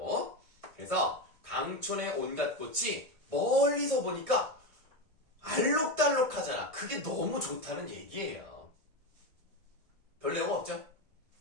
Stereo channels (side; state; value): left; late; 1.7 ms